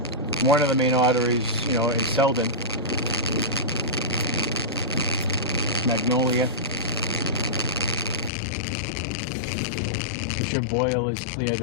One of the main arteries, in Selden. Magnolia. Fisher Boyle is cleared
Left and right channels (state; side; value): drops out; right; at 8.3 s